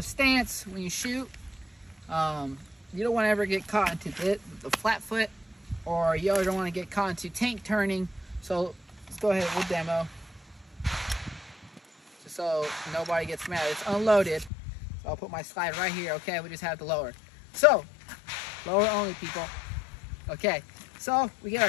stance when you shoot. You don't want to ever get caught into the flat foot, or you don't want to get caught into tank turning. So let's go ahead, we'll demo. Just so nobody gets mad. It's unloaded. So I'll put my slide right here, okay? We just have to lower. So, lower only, people. Okay, so we get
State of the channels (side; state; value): right; drops out; at 14.5 s